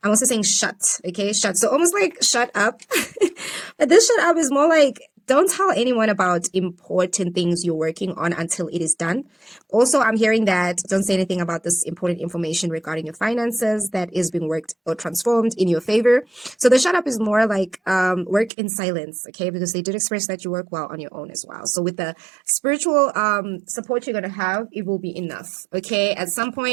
I'm also saying shut, okay? Shut. So almost like shut up. But this shut up is more like don't tell anyone about important things you're working on until it is done. Also, I'm hearing that don't say anything about this important information regarding your finances that is being worked or transformed in your favor. So the shut up is more like work in silence, okay? Because they did express that you work well on your own as well. So with the spiritual support you're going to have, it will be enough, okay? At some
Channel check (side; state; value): left; drops out; at 18.5 s